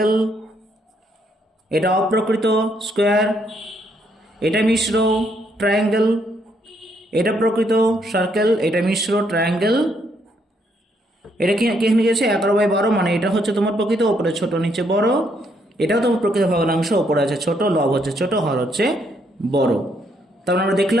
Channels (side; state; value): both; normal; correlation 0.72